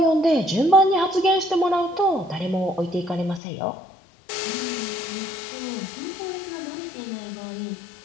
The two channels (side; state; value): right; drops out; at 3.4 s